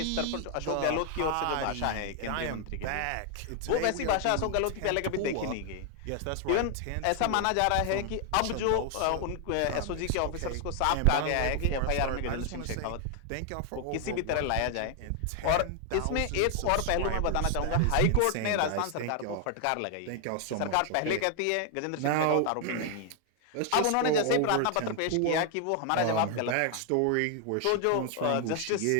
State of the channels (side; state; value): both; different; correlation 0.00